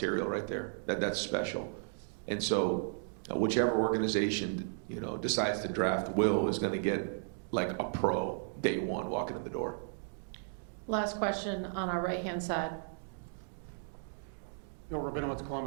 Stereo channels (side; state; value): left; silent; digital silence